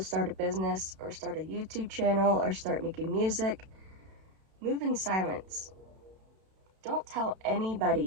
start a business or start a YouTube channel or start making music, move in silence. Don't tell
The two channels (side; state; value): left; late; 32 ms